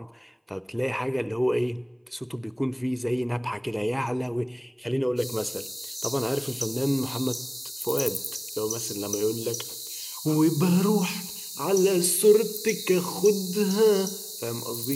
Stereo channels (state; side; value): identical; both; correlation 1.00